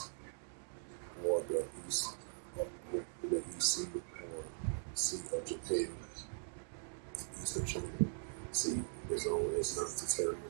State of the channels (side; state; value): left; silent; digital silence